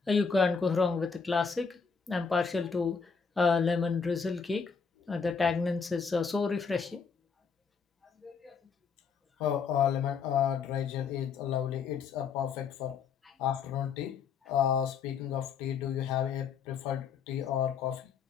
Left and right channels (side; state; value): right; quieter; 5.8 dB